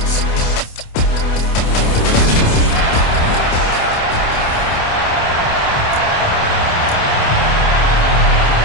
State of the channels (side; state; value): right; late; 28 ms